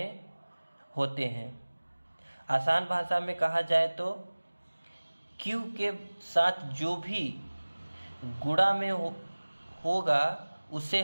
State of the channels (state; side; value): inverted; both; correlation -1.00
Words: होते हैं। आसान भाषा में कहा जाए तो q के साथ जो भी गुणा में होगा उसे